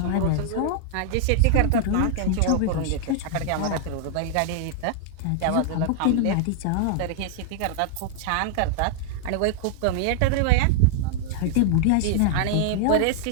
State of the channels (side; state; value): both; different; correlation -0.01